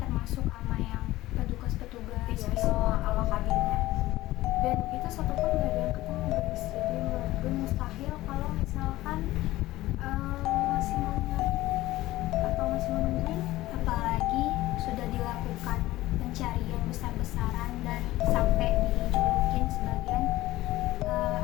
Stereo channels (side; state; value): right; quieter; 16.9 dB